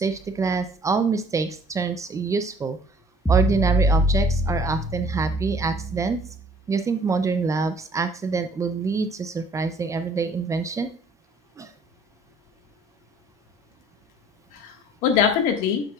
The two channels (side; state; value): both; normal; correlation 0.55